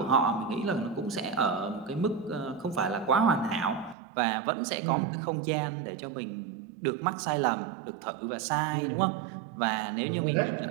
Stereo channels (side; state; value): left; drops out; at 4.0 s